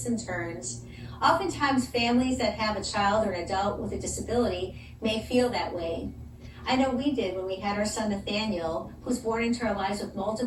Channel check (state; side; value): identical; both; correlation 1.00